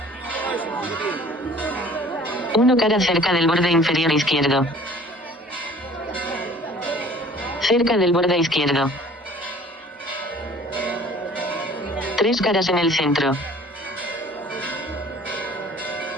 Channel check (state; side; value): normal; both; correlation 0.51